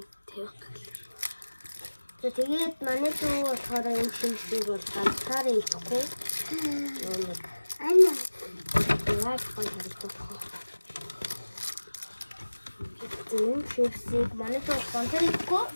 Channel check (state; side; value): inverted; both; correlation -1.00